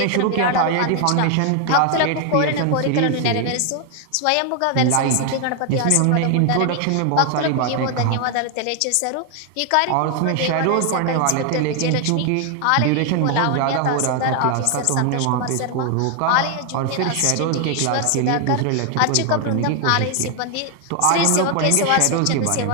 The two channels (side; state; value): both; different; correlation 0.00